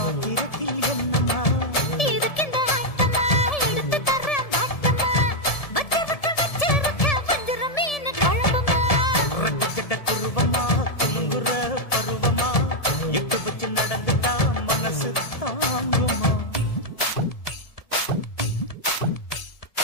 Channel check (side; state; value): right; late; 1.7 ms